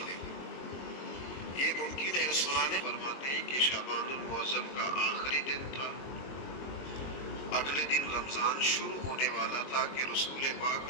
یہ ممکن ہے. سنانے فرماتے ہیں کہ شعبان المعظم کا آخری دن تھا، اگلے دن رمضان شروع ہونے والا تھا کہ رسول پاک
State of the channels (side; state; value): right; late; 22 ms